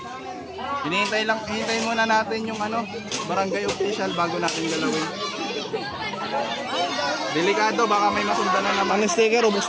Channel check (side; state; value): both; identical; correlation 1.00